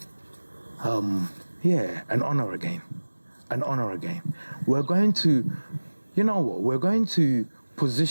an honor again. An honor again. We're going to, you know what, we're going to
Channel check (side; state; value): both; inverted; correlation -1.00